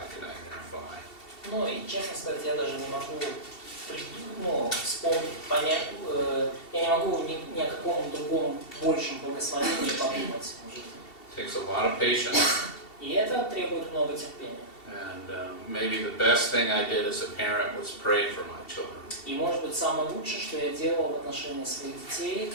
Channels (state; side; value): late; right; 2.7 ms